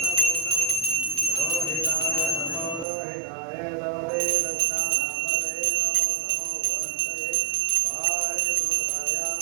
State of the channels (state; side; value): drops out; left; at 2.9 s